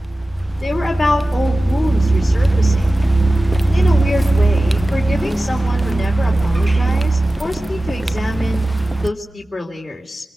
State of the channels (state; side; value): normal; both; correlation 0.96